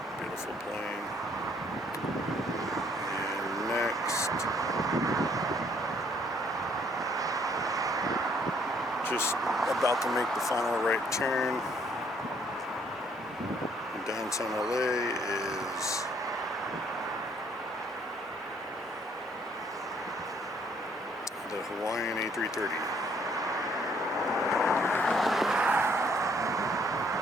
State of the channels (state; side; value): normal; both; correlation 0.64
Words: Beautiful plane. And next, just about to make the final right turn. In downtown LA is the Hawaiian A330.